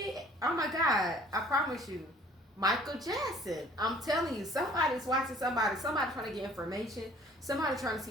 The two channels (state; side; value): normal; both; correlation 0.54